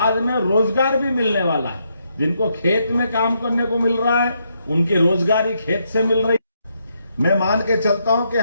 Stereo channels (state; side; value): inverted; both; correlation -0.78